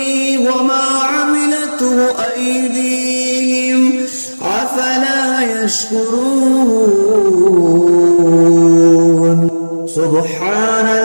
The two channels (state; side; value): inverted; both; correlation -1.00